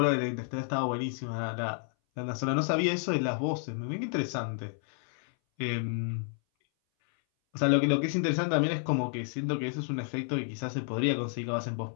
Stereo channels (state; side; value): silent; right; 57 dB below the other